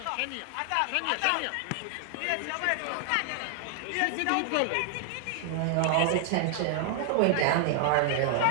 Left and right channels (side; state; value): both; different; correlation 0.00